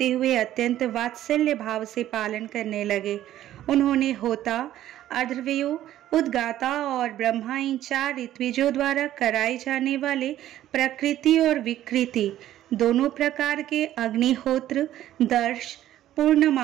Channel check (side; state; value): left; quieter; 12.9 dB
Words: हुए अत्यंत वात्सल्य भाव से पालन करने लगे। उन्होंने होता, अर्धव्यो, उद्गाता और ब्रह्मा इन 4 ऋत्विजों द्वारा कराए जाने वाले प्रकृति और विकृति दोनों प्रकार के अग्निहोत्र, दर्श,